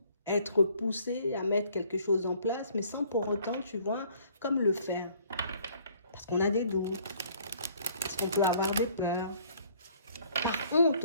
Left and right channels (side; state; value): both; inverted; correlation -0.60